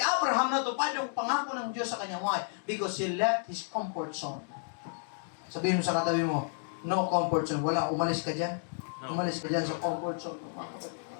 Abraham natupad yung pangako ng Diyos sa kanya. Why? Because he left his comfort zone. Sabihin mo sa katabi mo, no comfort zone. Wala, umalis ka dyan. No. Umalis ka dyan sa comfort zone.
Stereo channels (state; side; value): silent; right; digital silence